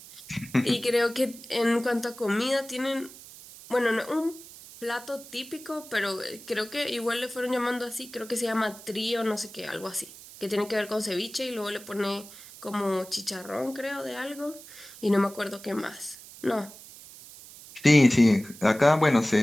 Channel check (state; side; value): noise; right; hiss, 17 dB below the sound